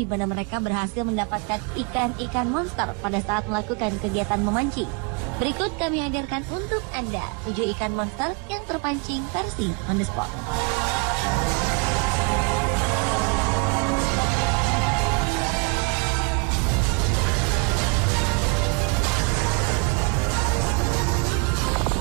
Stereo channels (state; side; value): quieter; left; 34.2 dB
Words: mana mereka berhasil mendapatkan ikan-ikan monster pada saat melakukan kegiatan memancing. Berikut kami hadirkan untuk Anda 7 ikan monster yang terpancing versi on the spot.